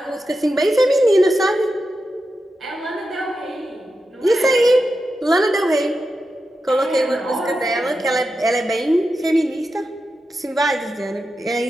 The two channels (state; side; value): normal; both; correlation 0.89